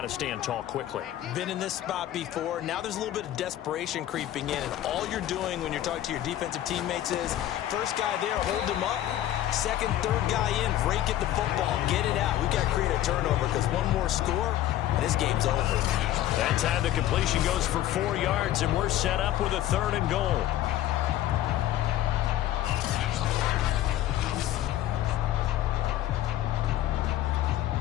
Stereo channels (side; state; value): right; quieter; 13.1 dB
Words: to stand tall quickly. Been in this spot before. Now there's a little bit of desperation creeping in. And all you're doing when you're talking to your defensive teammates is, first guy there, hold him up. Second, third guy in, rake at the football. Get it out. We've got to create a turnover because one more score, and this game's over. That time the completion goes for 4 yards, and we're set up with a 3rd and goal.